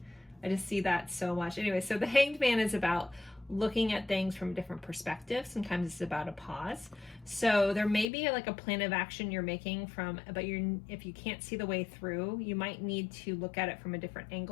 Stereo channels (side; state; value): right; drops out; at 8.1 s